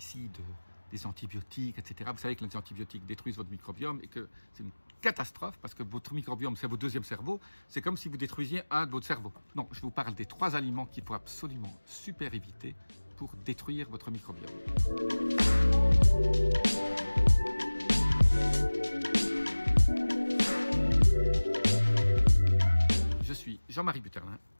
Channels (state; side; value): inverted; both; correlation -1.00